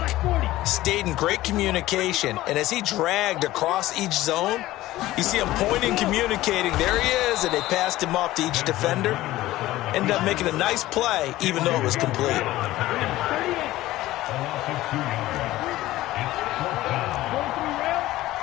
stayed in great communication. And as he dragged across each zone, you see him pointing, communicating. There he is, and they passed him off to each defender. Ended up making a nice play, even though it was complete.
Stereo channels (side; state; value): right; quieter; 16.4 dB